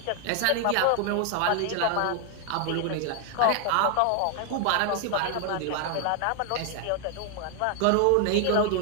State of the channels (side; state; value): both; different; correlation 0.00